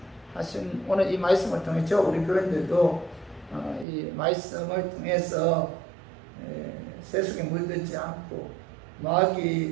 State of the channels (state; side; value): drops out; left; at 3.9 s